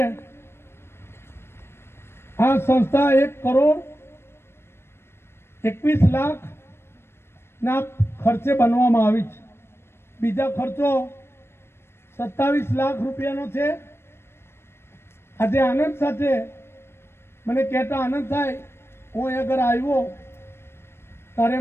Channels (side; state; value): right; late; 0.12 ms